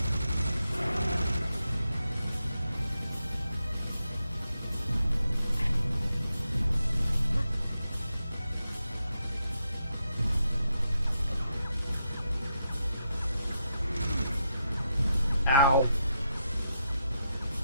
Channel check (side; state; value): both; inverted; correlation -0.84